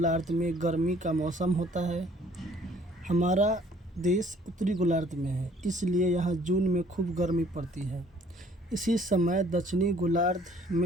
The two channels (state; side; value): normal; both; correlation 0.58